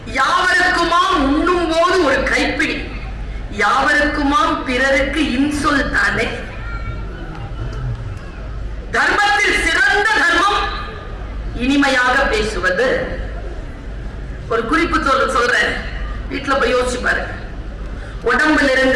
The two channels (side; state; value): both; identical; correlation 1.00